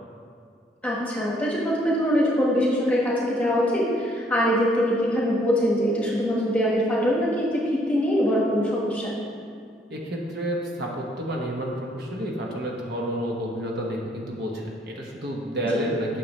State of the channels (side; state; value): both; normal; correlation 0.66